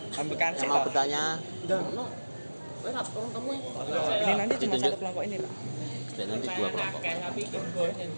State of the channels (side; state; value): both; inverted; correlation -1.00